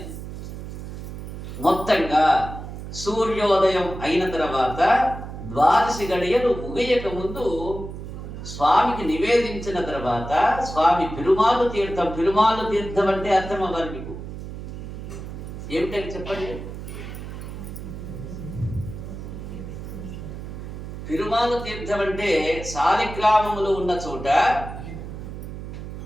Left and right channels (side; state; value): right; noise; hum, 9 dB below the sound